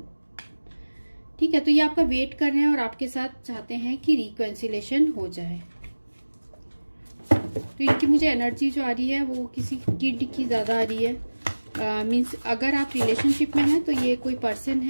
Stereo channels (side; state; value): both; inverted; correlation -1.00